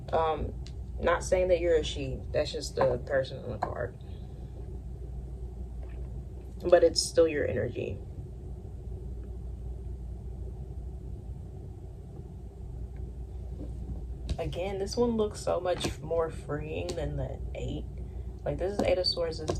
Not saying that you're a she. That's just the person on the card. But it's still your energy. Again, this one looks so much more freeing than the 8. Like, this is 8 of Swords, this is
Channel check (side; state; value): both; identical; correlation 1.00